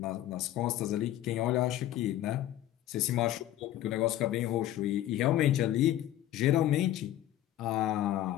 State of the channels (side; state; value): right; quieter; 13.1 dB